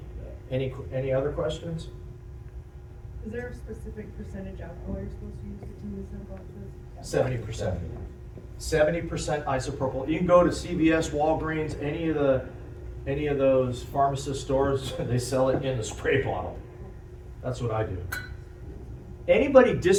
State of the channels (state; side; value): identical; both; correlation 1.00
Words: other questions? Is there a specific percentage alcohol you're supposed to use in these boxes? 70%. 70% isopropyl. You can go to CVS, Walgreens, any of those pharmacist stores, they sell it in the spray bottle. That's what I do. Anybody